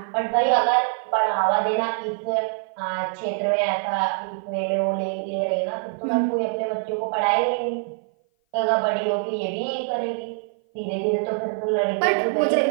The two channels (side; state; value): left; silent; 56 dB below the other